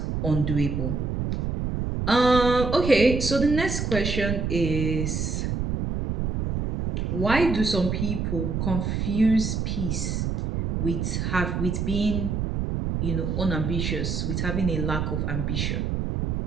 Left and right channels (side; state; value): right; noise; rumble, 1 dB below the sound